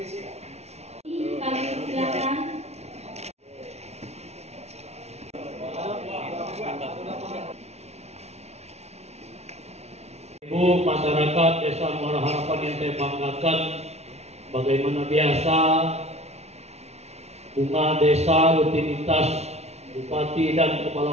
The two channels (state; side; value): late; left; 0.31 ms